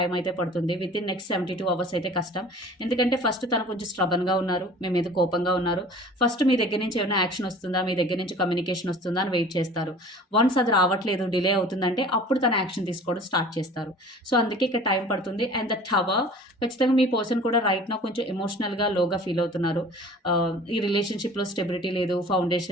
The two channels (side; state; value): both; normal; correlation 0.45